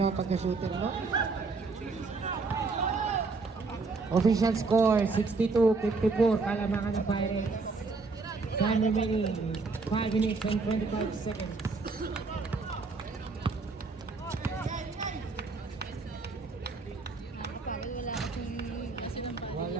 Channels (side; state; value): left; quieter; 4.1 dB